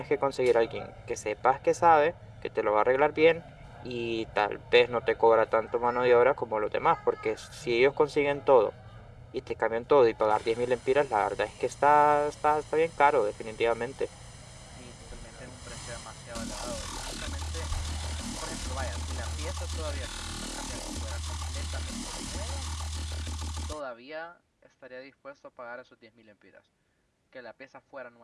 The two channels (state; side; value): identical; both; correlation 1.00